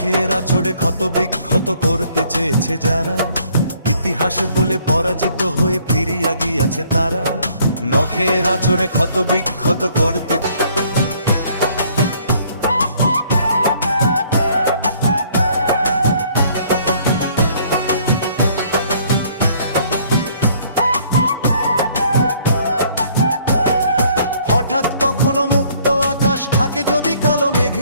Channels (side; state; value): both; inverted; correlation -0.61